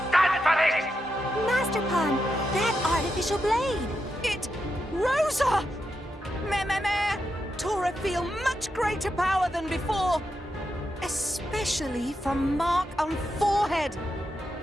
stand for this. Master Pawn, that artificial blade. It... Rosa! Meh. Tora feel much greater power than before. Especially from mark on forehead.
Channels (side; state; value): both; normal; correlation 0.85